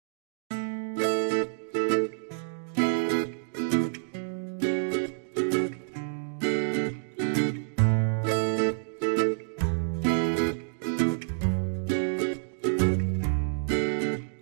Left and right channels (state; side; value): silent; left; digital silence